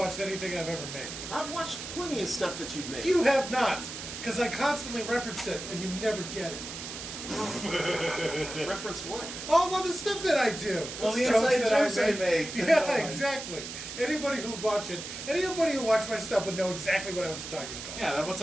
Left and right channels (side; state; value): right; noise; hiss, 9 dB below the sound